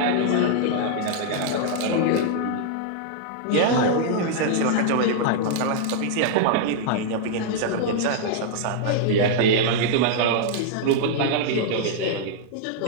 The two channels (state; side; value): different; both; correlation -0.01